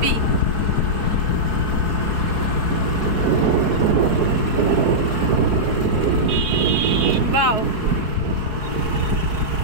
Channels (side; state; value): left; late; 4.6 ms